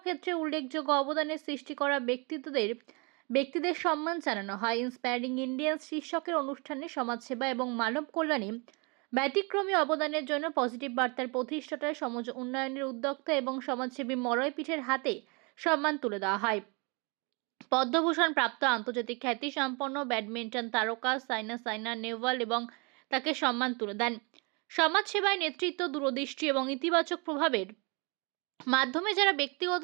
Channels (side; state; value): left; quieter; 30.9 dB